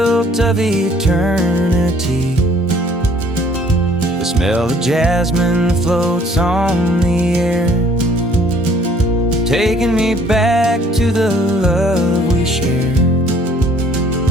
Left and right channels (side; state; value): both; normal; correlation 0.58